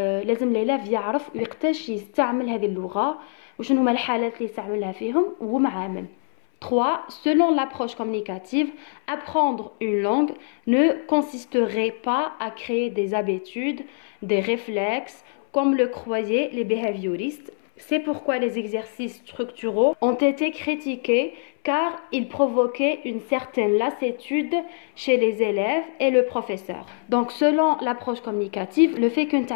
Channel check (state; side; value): silent; right; 63 dB below the other